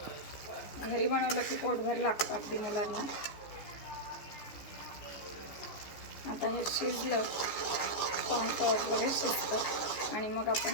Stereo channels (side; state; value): right; late; 14 ms